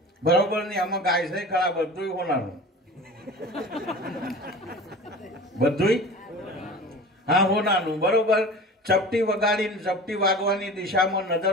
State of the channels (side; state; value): both; normal; correlation 0.37